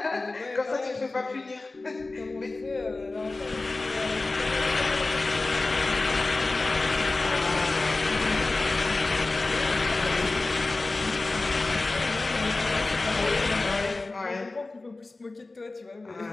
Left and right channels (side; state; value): right; quieter; 3.3 dB